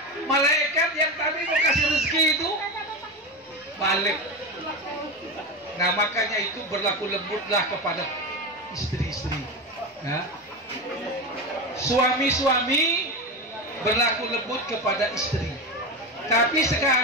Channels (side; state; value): both; normal; correlation 0.19